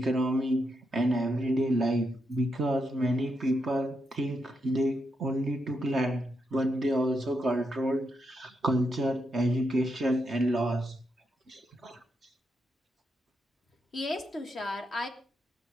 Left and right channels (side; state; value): both; normal; correlation 0.82